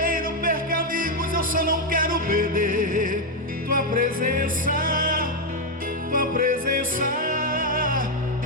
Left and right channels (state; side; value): normal; both; correlation 0.03